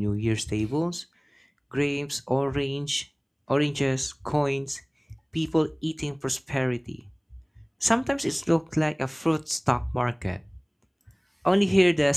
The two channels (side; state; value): both; identical; correlation 1.00